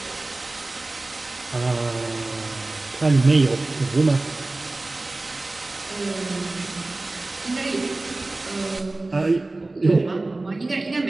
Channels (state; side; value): quieter; left; 3.0 dB